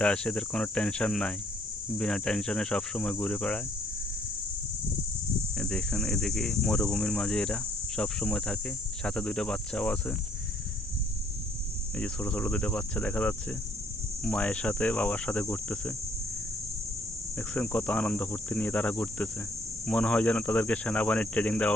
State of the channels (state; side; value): normal; both; correlation 0.64